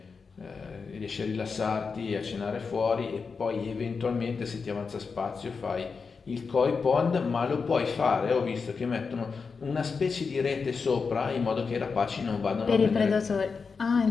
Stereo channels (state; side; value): quieter; right; 5.1 dB